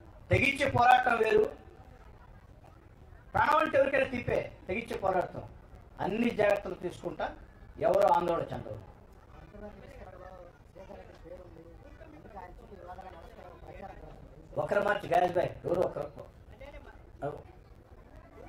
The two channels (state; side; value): identical; both; correlation 1.00